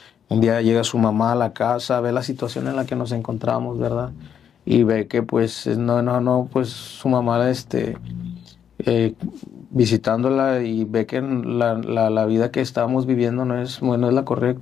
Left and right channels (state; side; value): quieter; right; 8.4 dB